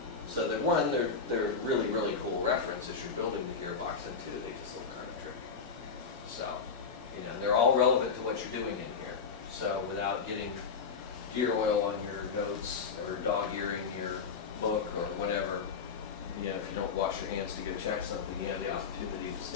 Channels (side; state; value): right; quieter; 5.4 dB